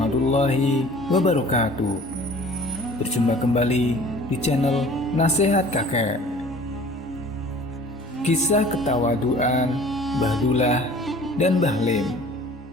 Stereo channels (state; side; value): normal; both; correlation 0.48